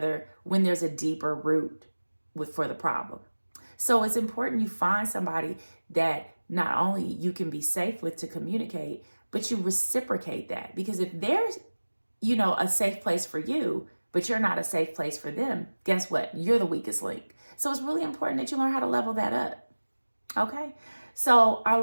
when there's a deeper root for the problem. So it's important you find somebody that not only you can be safe with to communicate, but you reciprocate that. Because if there's, a safe place for you, but you're not a safe place for them, guess what? You're the weakest link. So it's really important that you learn how to level that up. Okay? So our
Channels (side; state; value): both; inverted; correlation -1.00